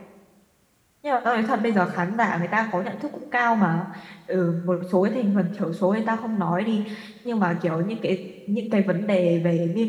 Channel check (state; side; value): identical; both; correlation 1.00